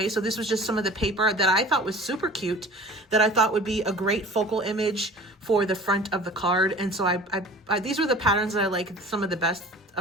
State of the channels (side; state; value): both; normal; correlation 0.44